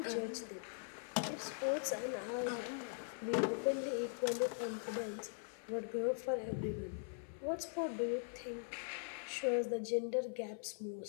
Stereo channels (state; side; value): silent; right; 50 dB below the other